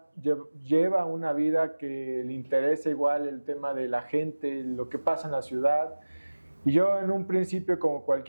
lleva una vida que le interesa igual el tema de la gente, lo que pasa en la ciudad. Y yo en un principio, como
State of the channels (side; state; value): both; inverted; correlation -1.00